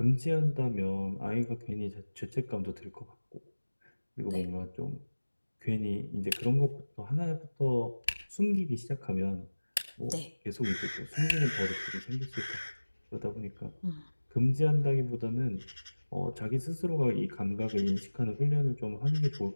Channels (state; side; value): inverted; both; correlation -1.00